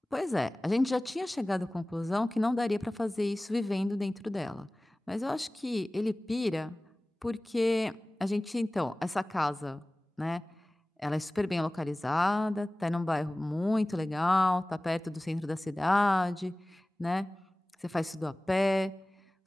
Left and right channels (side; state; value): both; normal; correlation 0.98